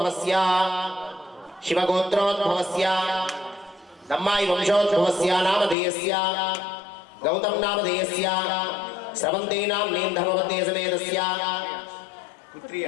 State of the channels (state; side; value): drops out; right; at 5.8 s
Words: शिवगोत्रोद्भवस्य दम्मायि वंशोद्भवस्य नामधेयस्य गौतम नामधेयस्य स्रवन्ती नाम्नीं धर्मवती समेतस्य